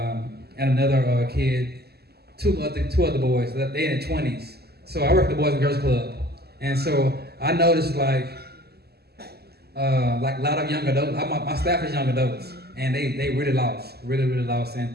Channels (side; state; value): left; late; 0.46 ms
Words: another kid, two other boys. They in their 20s. So I work at the Boys and Girls Club, and so I noticed like a lot of young adults. My staff is young adults, and they really lost, really lost, and